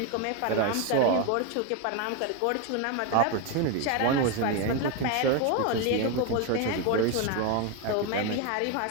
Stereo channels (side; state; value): both; different; correlation 0.02